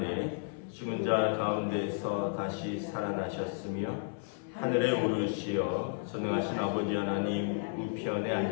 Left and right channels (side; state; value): right; silent; 56 dB below the other